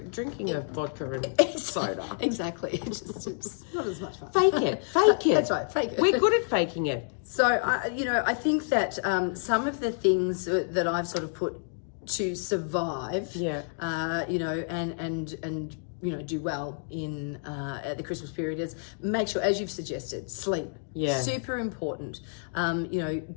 a vodka and soda. Exactly. It's not as much fun. Fake it. That's right, fake it. We're good at faking it. So, I think that some of the things that I've sort of put to survive, and do well in at the Christmas period is make sure, as you've suggested, sleep. Yeah. Super important.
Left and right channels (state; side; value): silent; right; digital silence